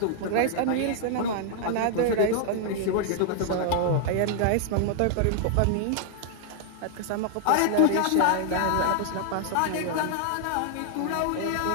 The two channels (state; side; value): different; both; correlation 0.00